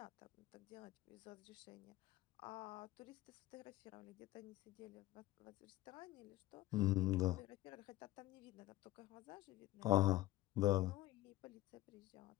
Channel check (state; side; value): quieter; right; 16.7 dB